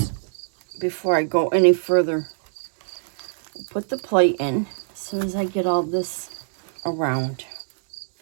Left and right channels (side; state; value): left; silent; digital silence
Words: before I go any further. Put the plate in. As soon as I get all this around,